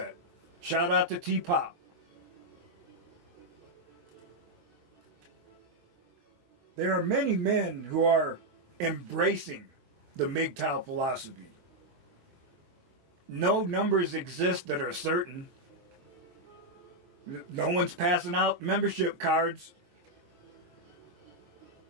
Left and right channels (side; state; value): left; late; 23 ms